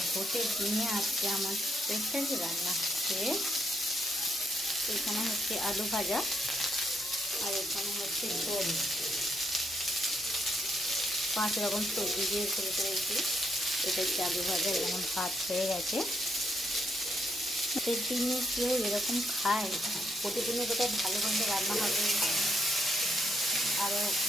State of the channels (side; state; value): both; normal; correlation 0.76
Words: ভোটের দিনে আজকে আমার স্পেশাল রান্না হচ্ছে, এখানে হচ্ছে আলু ভাজা, আর এখানে হচ্ছে ঝোল। 5 রকম সবজি দিয়ে করে করেছি। এটা হচ্ছে আলু ভাজা, এরকম ভাত হয়ে গেছে। ভোটের দিনে কেউ এরকম খায়? প্রতিদিনে বোধহয় ভালো মন্দ রান্না হবে, আরও